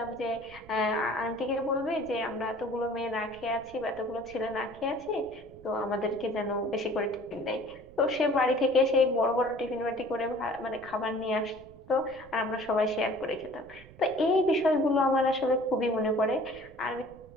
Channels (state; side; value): noise; right; rumble, 21 dB below the sound